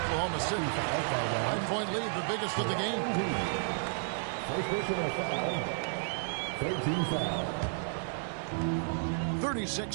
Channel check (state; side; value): silent; left; digital silence